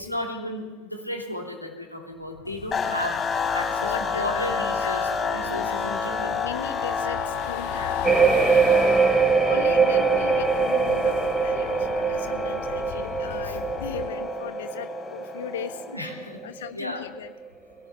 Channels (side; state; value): both; normal; correlation 0.59